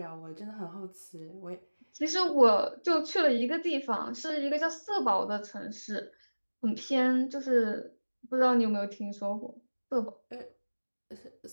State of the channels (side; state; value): both; inverted; correlation -1.00